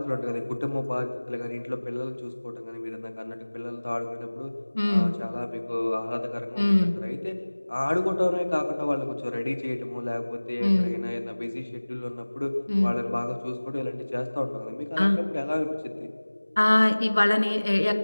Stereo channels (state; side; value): inverted; both; correlation -1.00